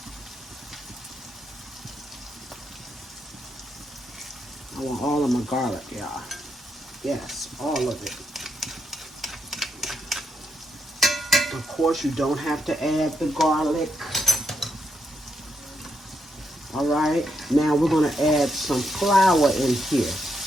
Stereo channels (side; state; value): both; normal; correlation 0.81